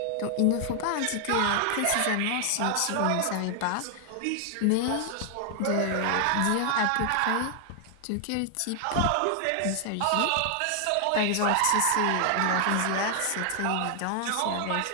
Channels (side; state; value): both; different; correlation 0.00